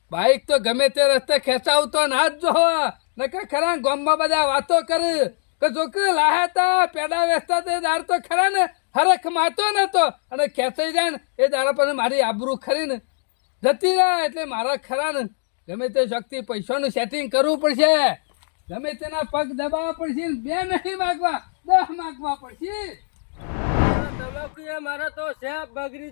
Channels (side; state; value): right; silent; digital silence